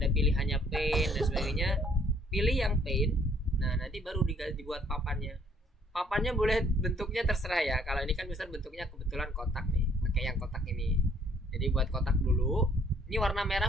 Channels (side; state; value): both; normal; correlation 0.62